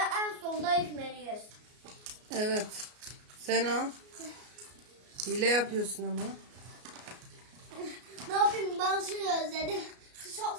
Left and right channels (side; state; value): left; late; 33 ms